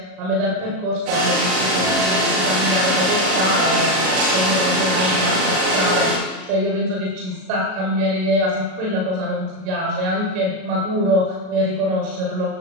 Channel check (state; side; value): late; left; 38 ms